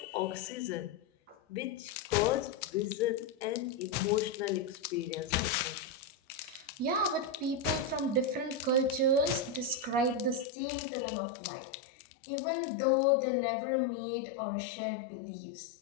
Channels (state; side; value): drops out; right; at 10.5 s